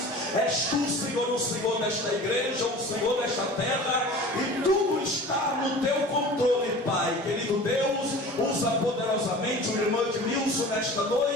És tu, Senhor, o Senhor desta igreja, o Senhor desta terra, e tudo está no teu controle, Pai. Querido Deus, usa poderosamente o irmão Edmilson nesta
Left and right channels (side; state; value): both; normal; correlation 0.40